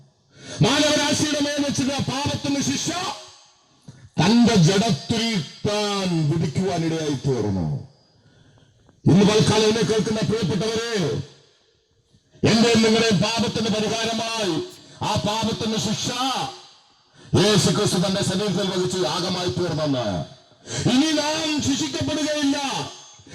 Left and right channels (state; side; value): identical; both; correlation 1.00